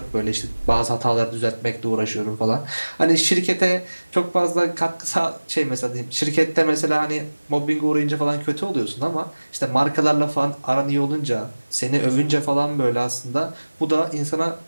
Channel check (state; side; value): inverted; both; correlation -1.00